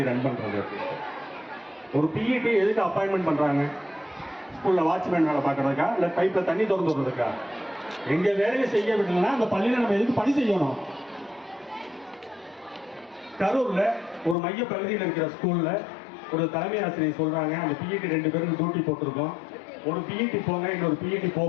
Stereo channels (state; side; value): drops out; right; at 14.4 s